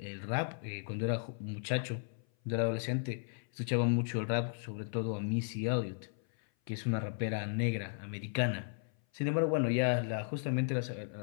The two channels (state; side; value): silent; right; 54 dB below the other